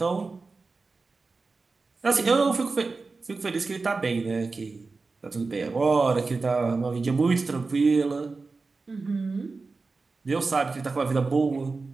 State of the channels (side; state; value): left; quieter; 4.0 dB